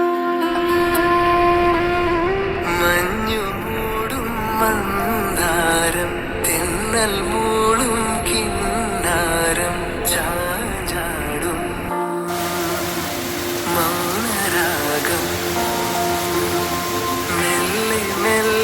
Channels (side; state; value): both; identical; correlation 1.00